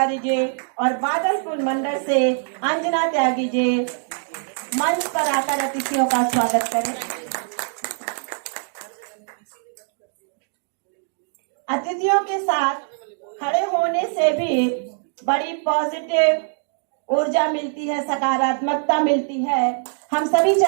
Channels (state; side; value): silent; left; 64 dB below the other